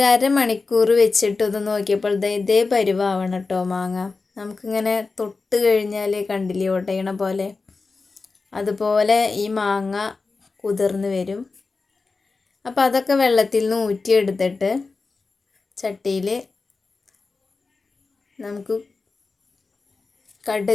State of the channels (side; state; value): right; quieter; 4.1 dB